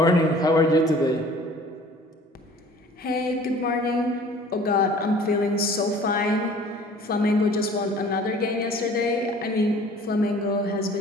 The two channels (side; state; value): both; normal; correlation 0.49